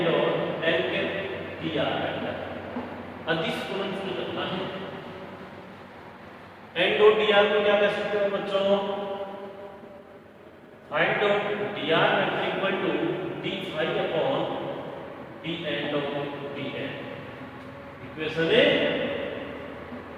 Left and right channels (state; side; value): identical; both; correlation 1.00